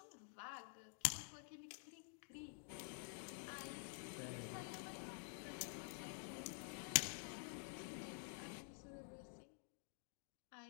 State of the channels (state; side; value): silent; right; digital silence